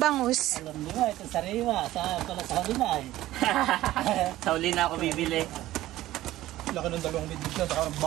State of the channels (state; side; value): quieter; left; 15.4 dB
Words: Alam niyo ito sariwa. Pala sa huli na eh. Sa uli na ako bibili. Laki ng dalawang midbit na, saka